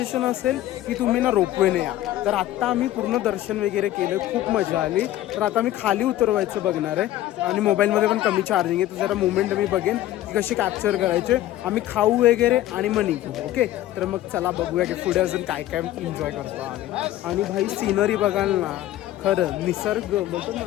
असेल की तुम्ही ना रोपवेने या. तर आत्ता आम्ही पूर्ण दर्शन वगैरे केलं, खूप मजा आली. तर आता आम्ही खाली उतरवायचं बघणार आहे आणि मोबाईलमध्ये पण कमी चार्जिंग आहे, तर जरा मुवमेंट मी बघेन की कशी कॅप्चर करायचे. आम्ही खाऊ वगैरे आणि मग निघू. ओके, तर मग चला बघूया की पुढे अजून काय काय एन्जॉय करतो आम्ही. आणि भाई सीनरी बघाल ना, खरं निसर्ग बोलतो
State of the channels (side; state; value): right; quieter; 14.1 dB